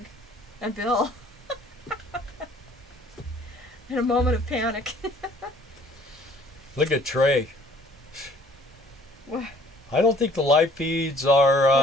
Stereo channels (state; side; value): normal; both; correlation 0.56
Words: and Bill. In a moment of panic. Look at Trey. What? I don't think the live feeds